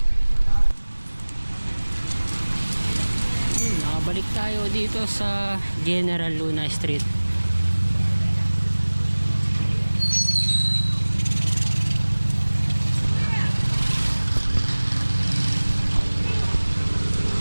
Nakabalik tayo dito sa General Luna Street.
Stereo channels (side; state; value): both; inverted; correlation -1.00